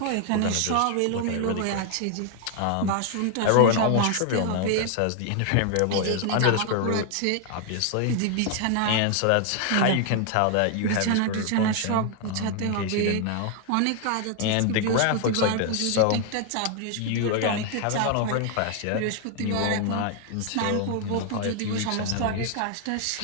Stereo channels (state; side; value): different; both; correlation 0.00